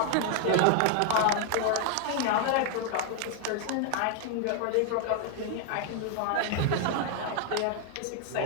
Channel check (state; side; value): different; both; correlation 0.00